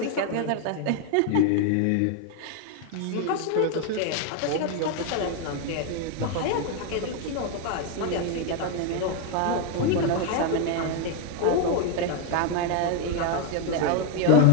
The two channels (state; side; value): different; both; correlation 0.01